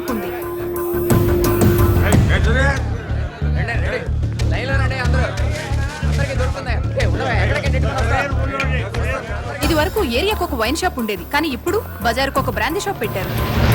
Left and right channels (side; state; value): both; identical; correlation 1.00